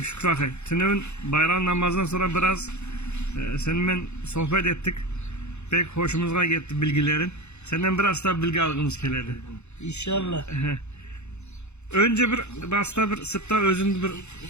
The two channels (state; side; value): late; right; 0.82 ms